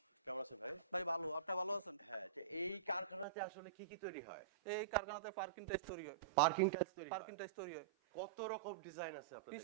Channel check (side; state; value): left; drops out; at 3.2 s